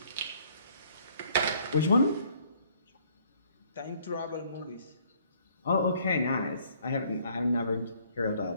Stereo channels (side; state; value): both; inverted; correlation -0.62